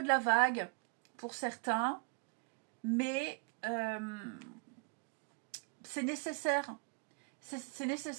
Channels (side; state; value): left; quieter; 33.4 dB